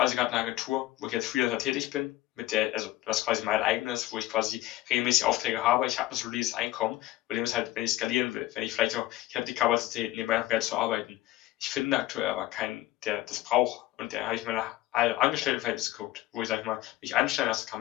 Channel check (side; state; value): right; quieter; 16.1 dB